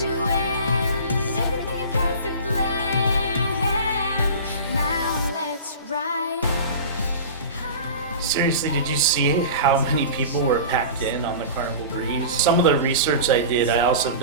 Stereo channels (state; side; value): inverted; both; correlation -0.34